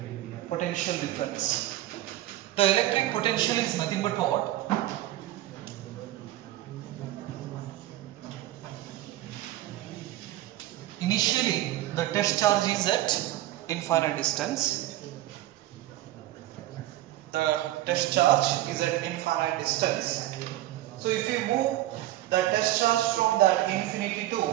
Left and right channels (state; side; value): quieter; left; 15.1 dB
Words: potential difference. The electric potential is nothing but what? Initially the test charge is at infinite distance. The test charge is at infinite distance. So if you move the test charge from that infinity to